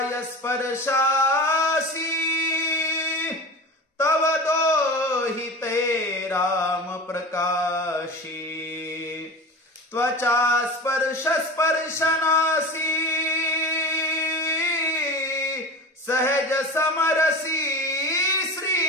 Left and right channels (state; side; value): normal; both; correlation 0.31